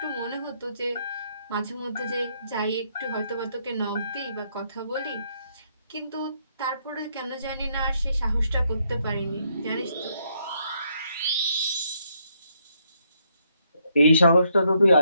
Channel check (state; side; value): inverted; both; correlation -0.74